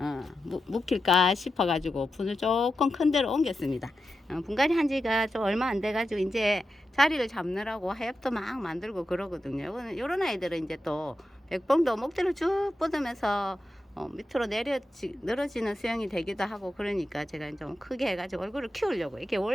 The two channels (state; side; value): normal; both; correlation 0.89